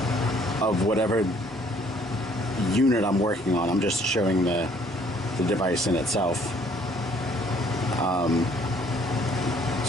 of whatever unit I'm working on. I'm just showing the device in itself.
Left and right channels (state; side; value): normal; both; correlation 0.61